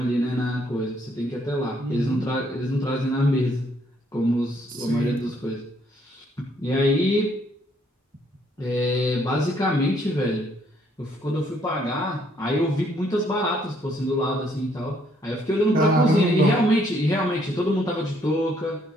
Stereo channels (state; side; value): normal; both; correlation 0.68